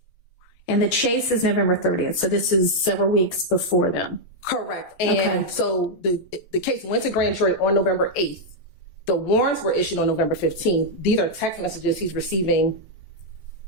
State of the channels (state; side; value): late; right; 12 ms